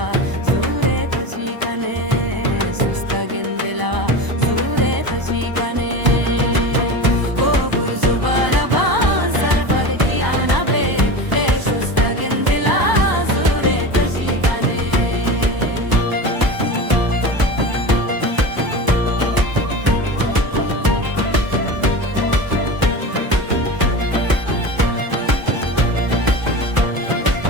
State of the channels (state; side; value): late; left; 1.0 ms